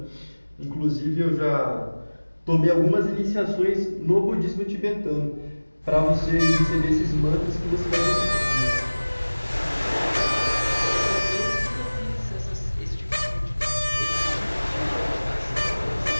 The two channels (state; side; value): inverted; both; correlation -1.00